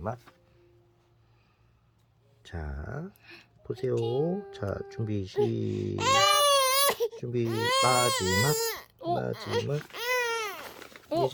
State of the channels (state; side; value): identical; both; correlation 1.00